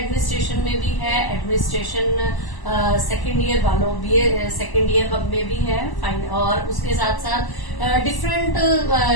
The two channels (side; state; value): right; late; 1.0 ms